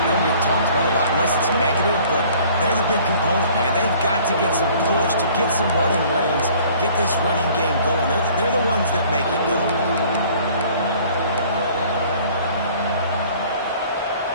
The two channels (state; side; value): inverted; both; correlation -0.53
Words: They don't get talked about a lot unless it's negative, but they're the big component, man. They've got to get some push, to get some running lanes, get this running game going. They're the ones that make it go.